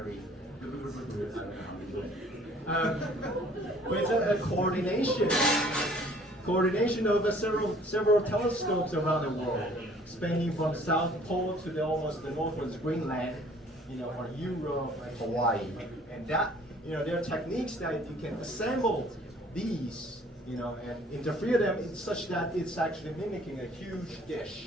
I don't know how to do it. But it's a coordination of several telescopes around the world spanning from South Pole to the almost the northwest Greenland, or Europe and Hawaii. And that, there are techniques that you can assemble these, and interfere them in such that it's actually mimicking a huge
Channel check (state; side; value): normal; both; correlation 0.55